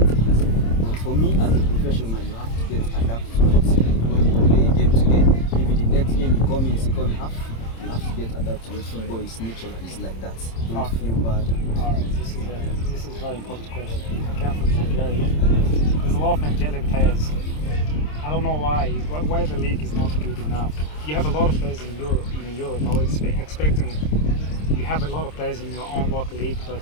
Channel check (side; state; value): right; late; 26 ms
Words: things. But for me, as a professional, you have to get adapted to it. When you play a game today, maybe the next game you come in second half, you have to get adapted to it. Football is natural, it's like that. Don't feel bad. Alright, this is a very important question. Come from Nigeria. There's a lot of Nigerian players. I don't know why the league is not good enough. You have a lot of players in Europe. I was expecting you have a lot of players in your own local league,